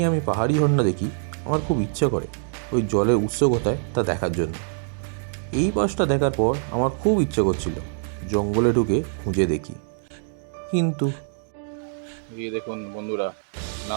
আমি পাহাড়ি ঝর্ণা দেখি আমার খুব ইচ্ছা করে ওই জলের উৎস কোথায় তা দেখার জন্য। এই পাশটা দেখার পর আমার খুব ইচ্ছে করছিল জঙ্গলে ঢুকে খুঁজে দেখি, কিন্তু এই দেখুন বন্ধুরা,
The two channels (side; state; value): left; silent; digital silence